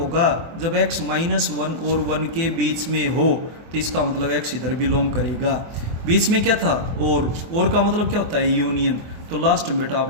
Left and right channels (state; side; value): late; left; 24 ms